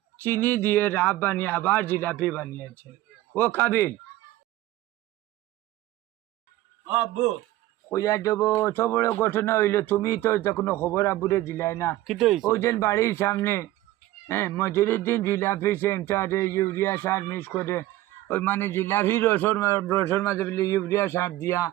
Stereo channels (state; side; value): quieter; left; 15.9 dB